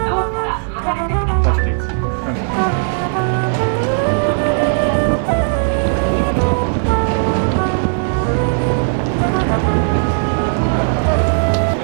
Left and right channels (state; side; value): silent; left; digital silence